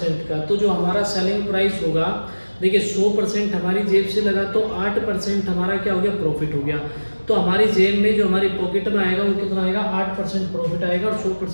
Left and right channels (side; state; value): both; inverted; correlation -1.00